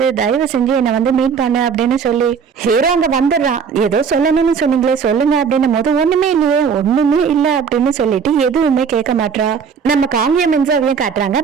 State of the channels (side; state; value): left; quieter; 6.5 dB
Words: தயவு செஞ்சு என்னை வந்து மீட் பண்ணு அப்படின்னு சொல்லி ஹீரோ அங்க வந்துடுறான். ஏதோ சொல்லணும்னு சொன்னீங்களே சொல்லுங்க அப்படின்னும் போது, ஒண்ணுமே இல்லையே ஒண்ணுமே இல்ல அப்படின்னு சொல்லிட்டு எதுவுமே கேட்க மாட்டா. நம்ம காங்கிய மின்சாவையும் காட்டுறாங்க.